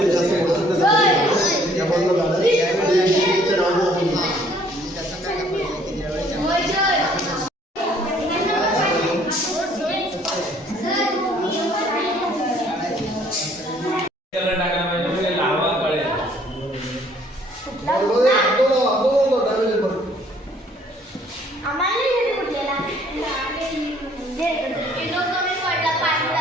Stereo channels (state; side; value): normal; both; correlation 0.60